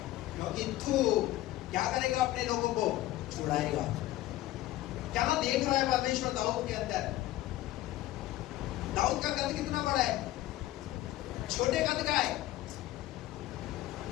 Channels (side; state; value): right; quieter; 15.7 dB